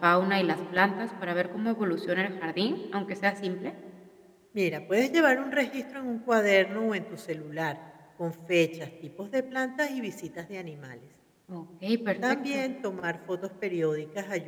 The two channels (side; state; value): both; identical; correlation 1.00